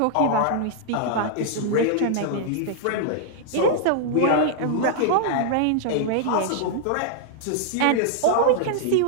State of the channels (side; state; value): both; different; correlation -0.01